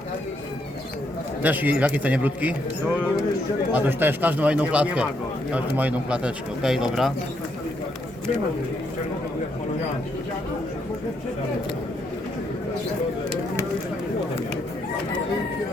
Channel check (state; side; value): normal; both; correlation 0.76